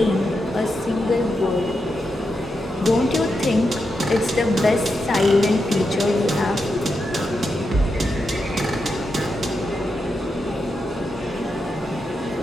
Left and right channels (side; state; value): both; normal; correlation 0.86